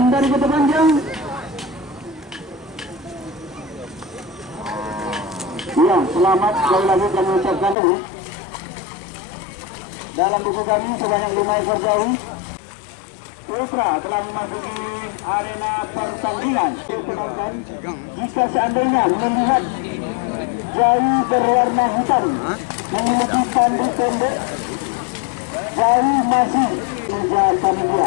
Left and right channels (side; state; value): right; drops out; at 7.8 s